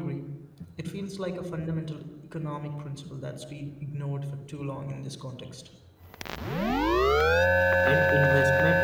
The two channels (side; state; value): both; identical; correlation 1.00